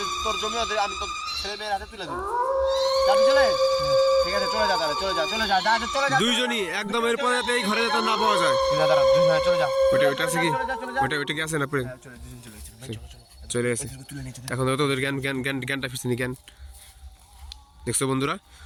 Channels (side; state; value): both; identical; correlation 1.00